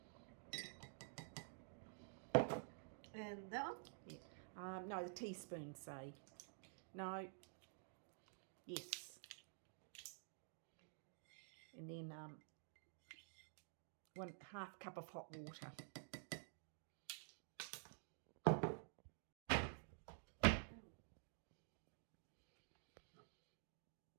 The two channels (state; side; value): silent; left; digital silence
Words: And that one? Yeah. No, the teaspoon, say. No. Yes. And then 1/2 cup of hot water.